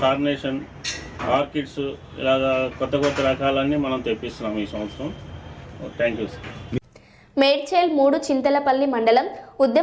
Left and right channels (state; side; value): identical; both; correlation 1.00